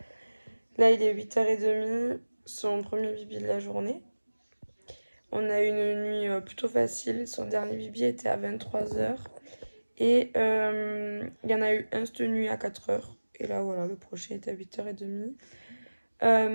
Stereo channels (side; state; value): both; inverted; correlation -1.00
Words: Là il est 8h30, son premier bibi de la journée. On a eu une nuit plutôt facile, son dernier bibi était à 23h. Et il y en a eu un cette nuit à 4h. Et là voilà, le prochain est à 8h30.